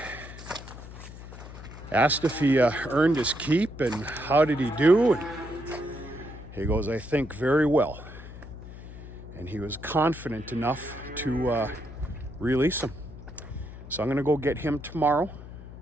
asked if he earned his keep and how did he do. And he goes, I think very well. And he was confident enough to release him. So I'm going to go get him tomorrow,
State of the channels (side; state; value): left; noise; hum, 14 dB below the sound